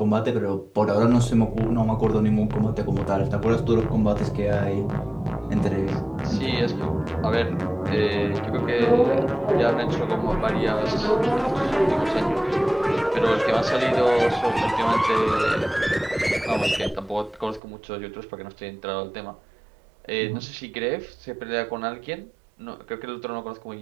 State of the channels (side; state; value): left; drops out; at 17.6 s